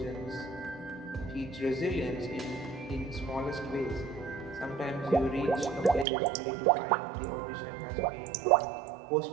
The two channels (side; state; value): left; drops out; at 6.1 s